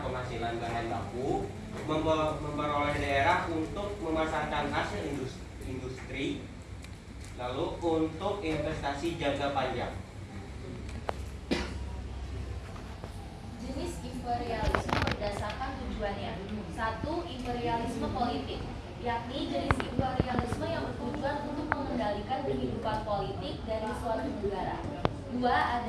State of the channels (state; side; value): identical; both; correlation 1.00